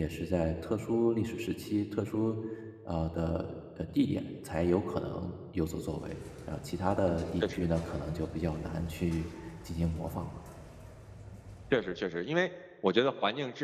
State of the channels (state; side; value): identical; both; correlation 1.00